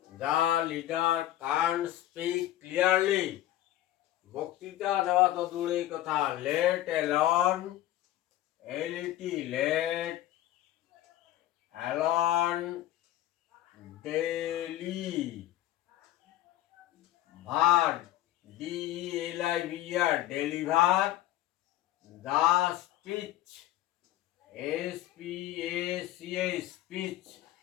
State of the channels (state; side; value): quieter; right; 14.1 dB